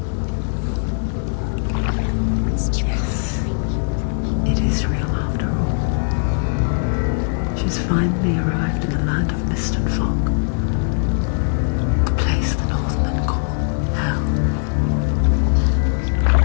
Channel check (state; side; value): silent; right; digital silence